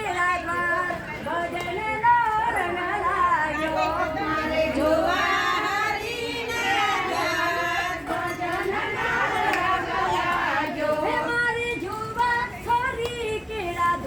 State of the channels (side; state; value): both; identical; correlation 1.00